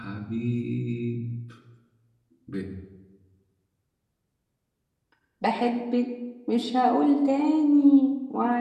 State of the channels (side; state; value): both; identical; correlation 1.00